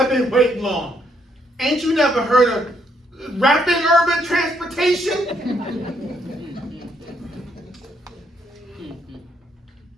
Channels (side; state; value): both; normal; correlation 0.73